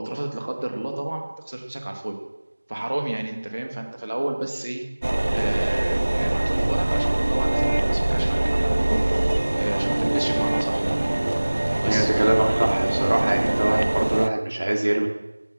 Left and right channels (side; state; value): both; inverted; correlation -1.00